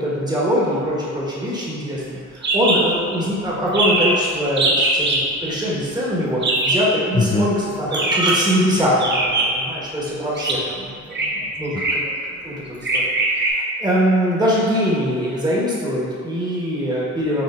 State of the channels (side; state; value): both; normal; correlation 0.31